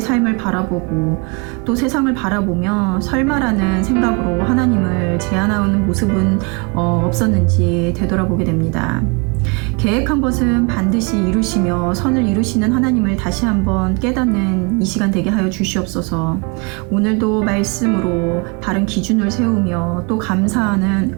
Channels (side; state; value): left; quieter; 31.2 dB